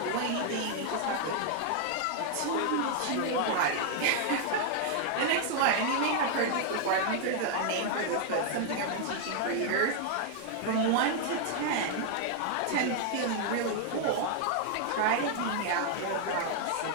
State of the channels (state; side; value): different; both; correlation 0.00